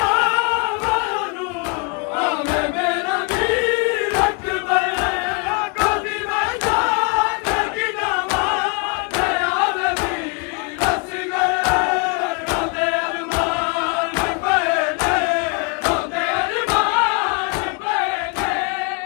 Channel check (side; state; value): right; quieter; 31.3 dB